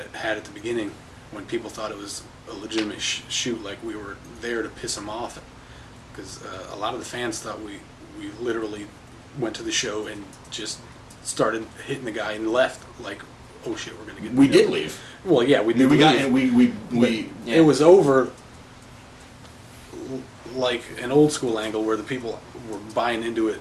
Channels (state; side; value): identical; both; correlation 1.00